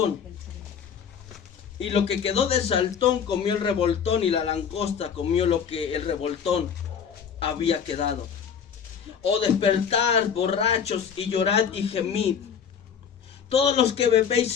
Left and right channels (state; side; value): quieter; right; 7.4 dB